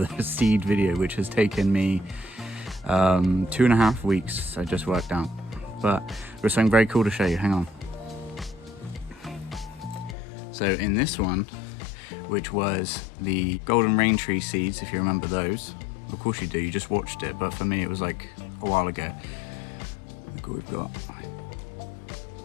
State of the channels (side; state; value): right; drops out; at 10.2 s